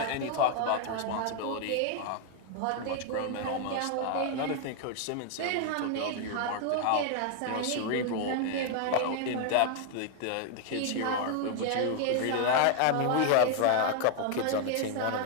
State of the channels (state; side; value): different; both; correlation 0.00